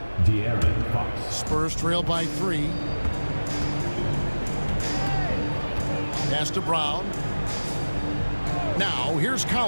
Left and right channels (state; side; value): inverted; both; correlation -1.00